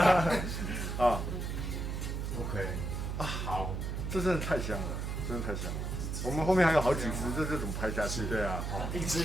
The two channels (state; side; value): noise; right; hum, 3 dB below the sound